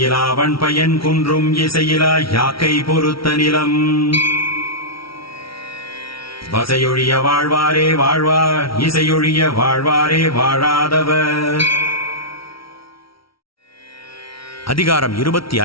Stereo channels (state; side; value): late; right; 0.75 ms